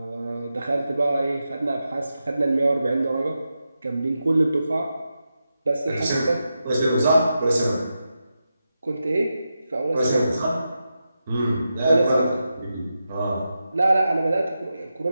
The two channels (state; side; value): inverted; both; correlation -0.89